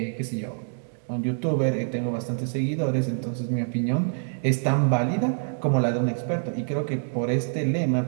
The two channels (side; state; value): left; silent; digital silence